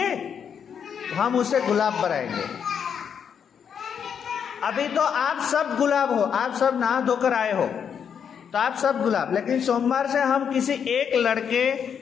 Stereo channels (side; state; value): right; quieter; 7.6 dB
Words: हम उसे गुलाब बनाएंगे। अभी तो आप सब गुलाब हो, आप सब नहा धोकर आए हो तो आप सब गुलाब, लेकिन सोमवार से हम किसी एक लड़के